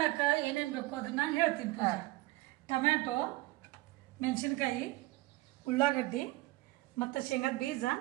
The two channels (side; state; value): left; quieter; 20.0 dB